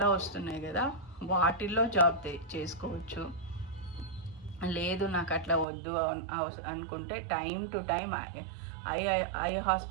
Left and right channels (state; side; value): drops out; left; at 5.7 s